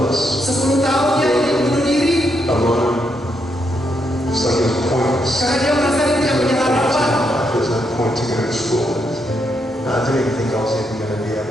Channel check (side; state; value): both; normal; correlation 0.79